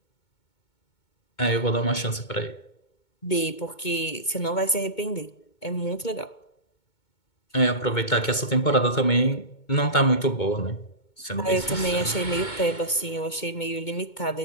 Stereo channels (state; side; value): late; right; 2.2 ms